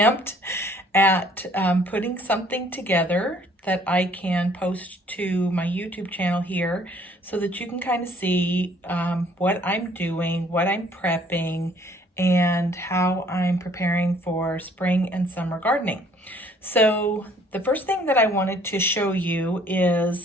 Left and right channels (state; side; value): normal; both; correlation 0.59